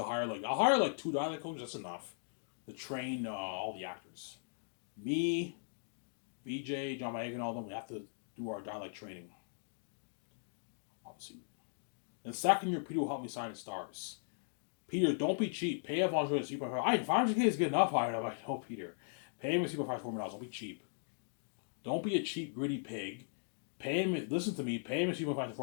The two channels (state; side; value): silent; right; digital silence